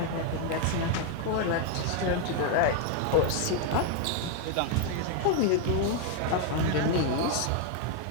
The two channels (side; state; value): both; different; correlation 0.01